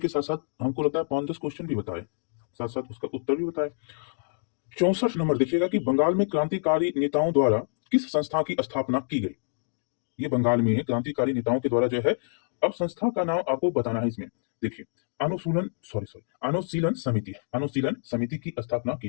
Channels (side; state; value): right; silent; digital silence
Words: साथ साथ हमको लगता है 5-10 क्वेश्चन भी बताए, साथ साथ उसका उत्तर भी बताए। 64 नंबर देखिएगा कि बंगाल में क्रांतिकारी नेताओं द्वारा किस संस्था की स्थापना की गई। ये बंगाल में क्रांतिकारी नेताओं के द्वारा जो है, अब संस्था का नाम आपको बताना है इसमें। देखिए, अनुशीलन समिति, अनुशीलन समिति की स्थापना की